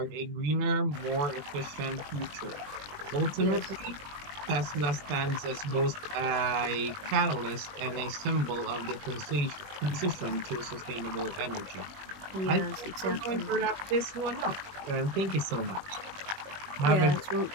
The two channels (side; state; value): left; late; 20 ms